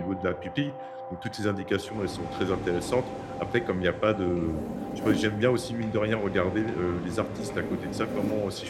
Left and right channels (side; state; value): both; identical; correlation 1.00